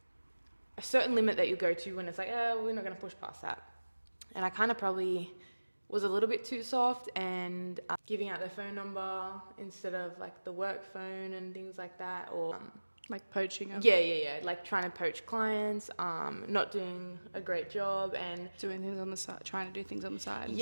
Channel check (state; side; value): inverted; both; correlation -1.00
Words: a certain limit that you go to when it's like, oh, we're not going to push past that. And I kind of probably was a little bit too soft and giving out their phone number instead of like the work phone and things like that, or Like poaching them? yeah, like trying to poach clients, not doing a great job, and Doing things on the side, trying to do things on the side. and